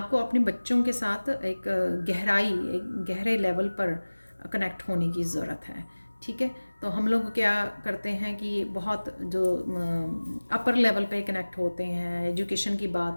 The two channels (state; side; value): inverted; both; correlation -1.00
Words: अपने बच्चों के साथ एक गहरे लेवल पर कनेक्ट होने की ज़रूरत है। ठीक है, तो हम लोग क्या करते हैं कि बहुत जो अपर लेवल पे कनेक्ट होते हैं, एजुकेशन की